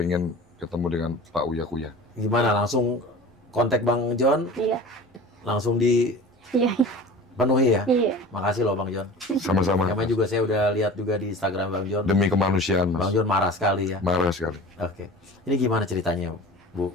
ketemu dengan Pak Uya Kuya. Gimana, langsung kontak Bang John? Iya. Langsung Iya. dipenuhi ya? Iya. Makasih loh Bang John. Sama-sama. Namanya juga saya udah lihat juga di Instagram Bang John. Demi kemanusiaan, Mas. Bang John marah sekali ya? Marah sekali. Oke. Ini gimana ceritanya,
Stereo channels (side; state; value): both; normal; correlation 0.38